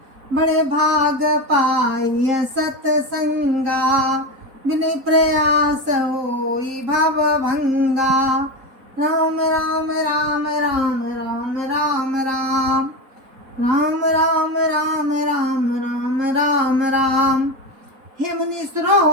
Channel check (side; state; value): left; late; 4.1 ms